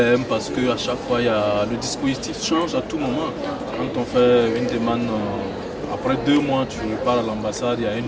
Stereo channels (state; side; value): identical; both; correlation 1.00